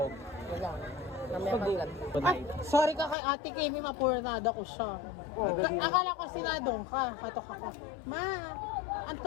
Wala. Namaya Ay, sorry ka kay Ate Kimi, mapurnada ko siya. Akala ko sinatong ka. Katok ako. Ma, ang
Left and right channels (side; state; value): right; drops out; at 3.2 s